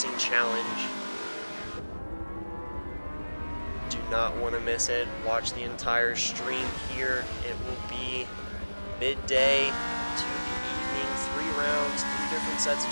Challenge. Do not want to miss it. Watch the entire stream here. It will be midday to the evening, 3 rounds, 3 different sets of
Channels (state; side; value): inverted; both; correlation -1.00